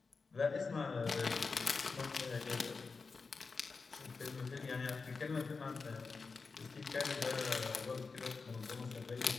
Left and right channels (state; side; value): quieter; right; 4.5 dB